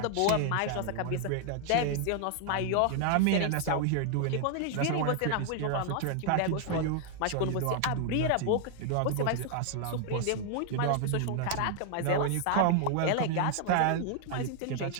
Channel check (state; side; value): different; both; correlation 0.00